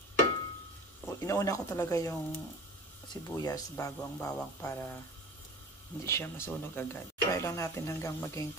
inauna ko talaga yung sibuyas bago ang bawang para hindi siya masunog agad. Try lang natin hanggang maging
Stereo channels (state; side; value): normal; both; correlation 0.38